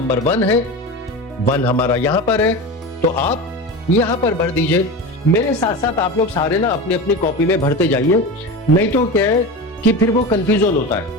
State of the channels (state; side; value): normal; both; correlation 0.26